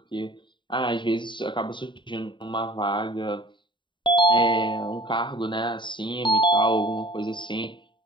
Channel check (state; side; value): late; right; 0.23 ms